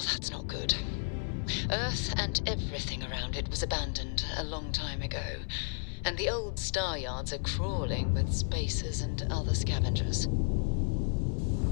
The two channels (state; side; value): silent; right; 56 dB below the other